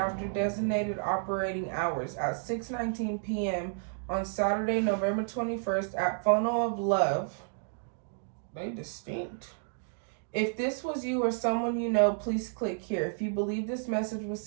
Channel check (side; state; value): left; silent; digital silence